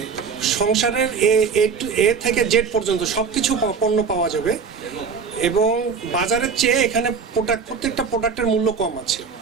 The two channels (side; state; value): left; quieter; 5.7 dB